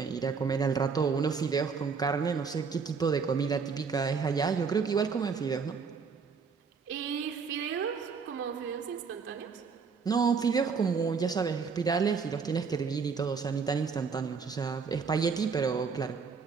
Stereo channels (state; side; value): quieter; left; 5.5 dB